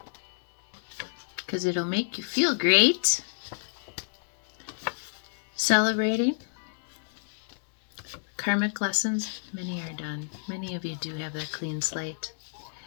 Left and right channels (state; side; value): silent; right; 58 dB below the other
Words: because it'll make you feel great. Celebrating. Karmic lessons, many are done. Many of you do have that clean slate.